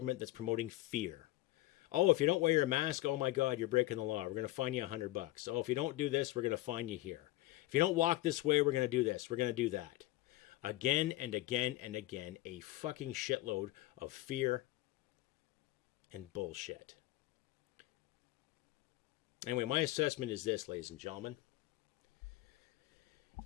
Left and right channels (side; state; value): right; quieter; 17.3 dB